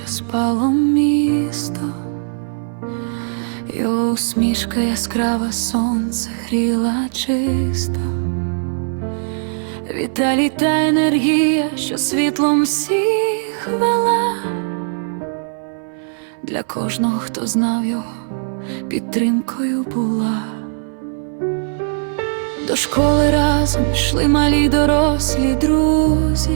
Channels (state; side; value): silent; left; 60 dB below the other